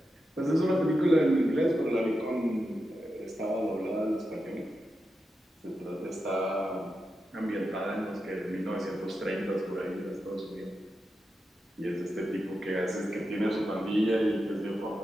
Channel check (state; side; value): normal; both; correlation 0.89